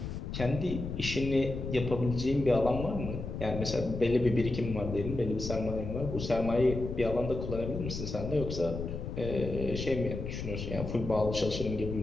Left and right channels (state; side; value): noise; left; rumble, 6 dB below the sound